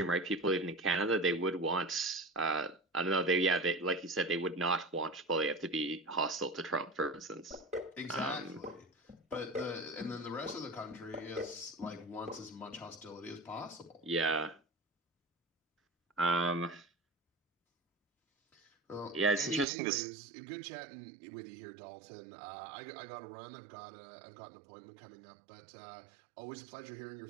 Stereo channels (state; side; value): drops out; left; at 19.7 s